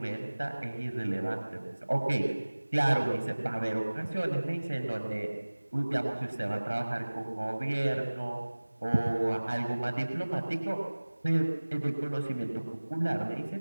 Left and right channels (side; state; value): both; inverted; correlation -1.00